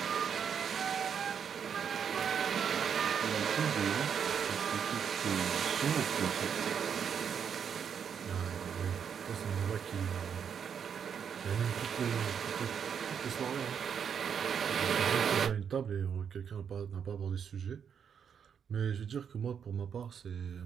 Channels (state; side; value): quieter; left; 7.5 dB